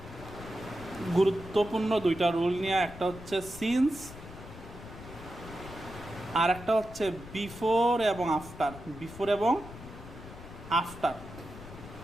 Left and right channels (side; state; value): left; noise; rumble, 14 dB below the sound